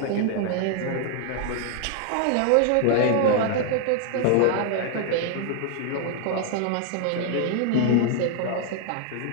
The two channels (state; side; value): different; both; correlation 0.00